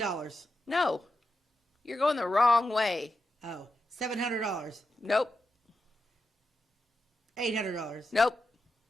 No, you're going the wrong way. Oh, $700. Nope. $800. Nope.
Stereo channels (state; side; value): normal; both; correlation 0.88